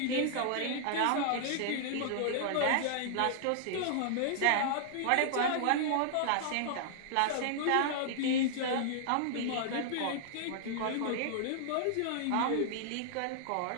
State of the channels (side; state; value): both; different; correlation -0.01